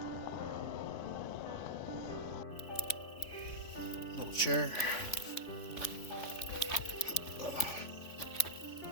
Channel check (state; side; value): late; right; 3.5 ms